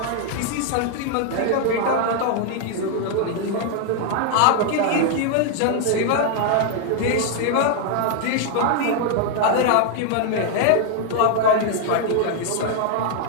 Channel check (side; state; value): both; different; correlation 0.00